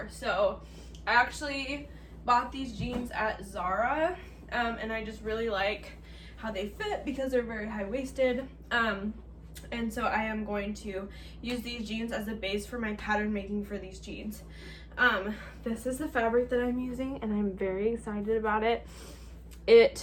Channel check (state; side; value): identical; both; correlation 1.00